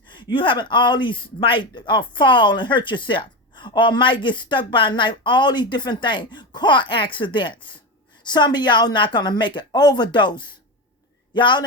You having all these might fall and hurt yourself. Or might get stuck by a knife. All these different things. Car accidents. Some of y'all not going to make it. Overdose. Y'all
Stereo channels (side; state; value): both; normal; correlation 0.19